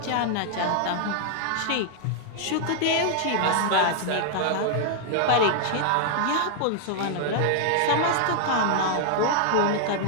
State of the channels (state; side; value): different; both; correlation 0.00